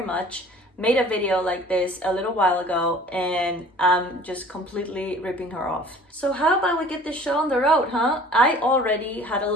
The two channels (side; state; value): both; normal; correlation 0.47